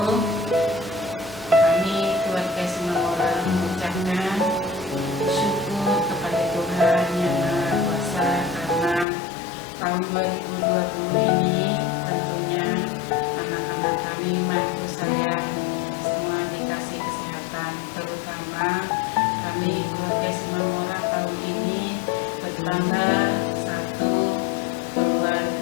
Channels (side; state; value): right; drops out; at 9.1 s